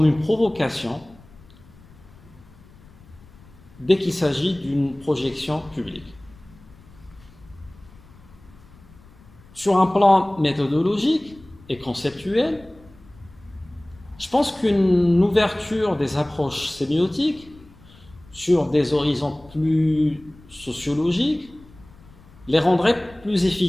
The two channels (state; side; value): noise; left; rumble, 24 dB below the sound